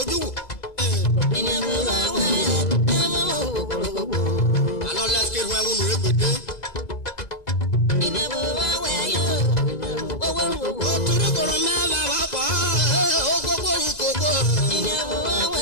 wò. Àlọ́ lẹ́sìkì ìwọ̀n ẹ̀wọ̀n nù égbèdé. Òtúrí kòrò mẹ́fà wá pọ̀ ó gbogbo ìkòkò.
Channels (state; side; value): late; right; 2.0 ms